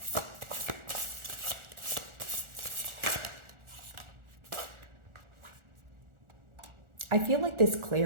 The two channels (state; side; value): late; left; 1.4 ms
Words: I feel like this